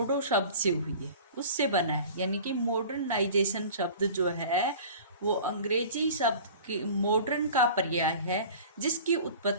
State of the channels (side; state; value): both; inverted; correlation -0.42